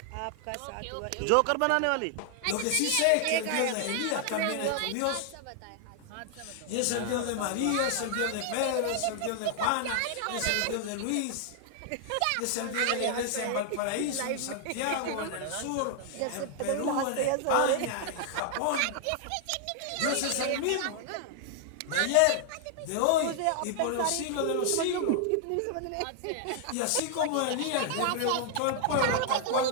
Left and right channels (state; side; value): different; both; correlation 0.00